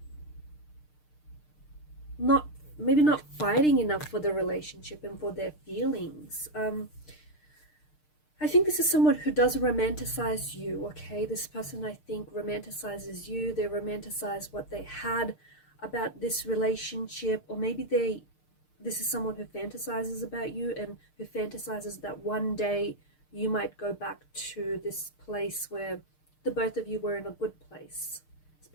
maybe not fighting enough for the relationship and for their feelings. I think this is someone who does romanticize you, okay? This person, I think, romanticizes you. They romanticize what they had about this relationship, or maybe this is someone who fantasizes about you and who fantasizes that one day you might go back to this place where the both of you were in a good place,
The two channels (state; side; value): late; right; 6.6 ms